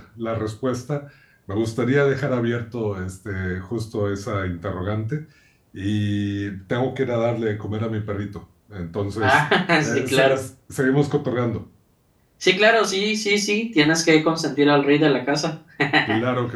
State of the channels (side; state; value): both; identical; correlation 1.00